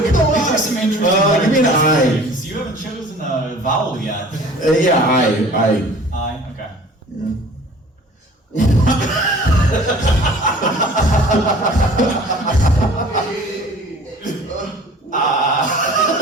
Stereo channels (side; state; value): both; normal; correlation 0.47